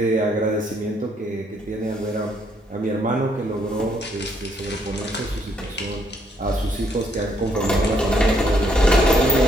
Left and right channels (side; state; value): both; normal; correlation 0.71